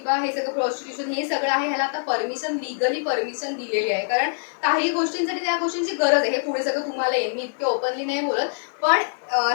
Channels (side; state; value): right; silent; digital silence